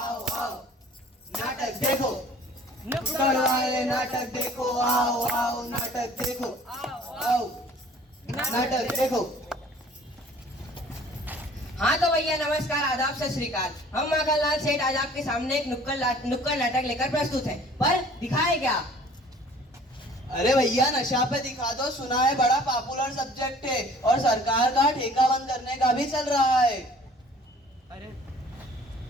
आओ नाटक देखो, नुक्कड़ वाले नाटक देखो। आओ आओ नाटक देखो, आओ नाटक देखो। हाँ तो भैया नमस्कार, आदाब, सत श्री अकाल। हम माखनलाल सेठ आज आपके सामने एक नुक्कड़ नाटक लेकर प्रस्तुत हैं, पर दिखाए क्या? अरे भैया नशा पे दिखा दो, सुना है बड़ा पॉपुलर सब्जेक्ट है और सरकार का ठेका बंद करने का भी चल रहा है।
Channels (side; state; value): both; normal; correlation 0.51